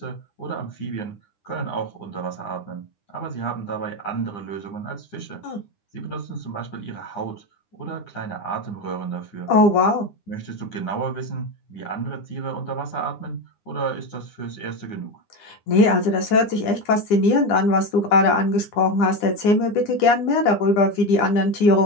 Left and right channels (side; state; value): right; late; 9.8 ms